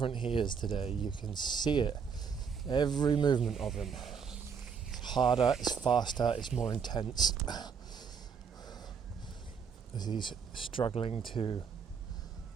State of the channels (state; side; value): quieter; left; 6.3 dB